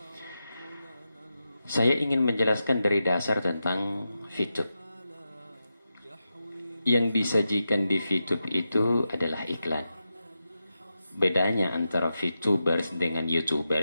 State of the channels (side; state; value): both; inverted; correlation -0.89